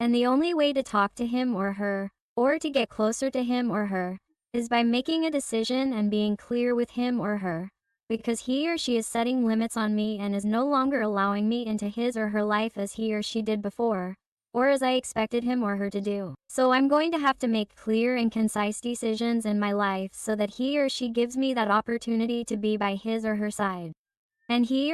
the only way to talk to him or her, or to get closer to him or her, is by making a decision and being clear with him or her, because he or she is setting limits on me and is no longer allowing me into his or her life as he or she did before, or as I expected him or her to do. So I'm going to have to make clear and concise decisions in my life so that he or she gives me that opportunity to be by his or her side. And he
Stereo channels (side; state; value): both; identical; correlation 1.00